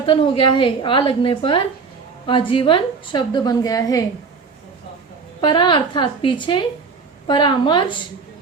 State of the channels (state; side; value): quieter; left; 5.0 dB